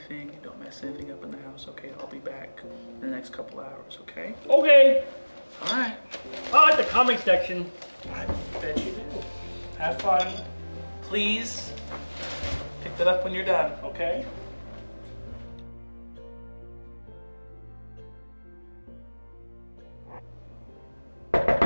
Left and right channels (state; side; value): inverted; both; correlation -1.00